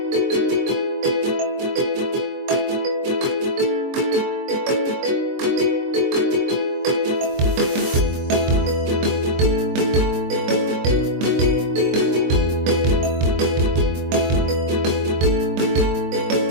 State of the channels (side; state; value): left; late; 23 ms